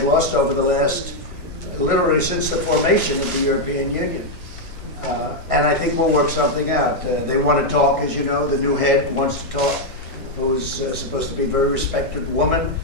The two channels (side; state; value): both; normal; correlation 0.00